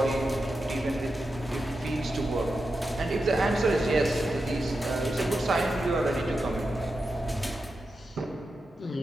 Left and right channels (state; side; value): normal; both; correlation 0.89